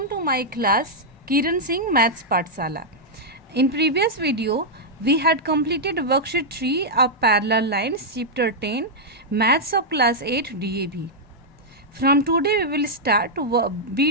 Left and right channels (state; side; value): normal; both; correlation -0.05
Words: to my class Kiran Singh Maths Pathsala. In previous video, we had completed worksheet 3 of parallel lines chapter 10 Maths of class 8 DAB. From today we will start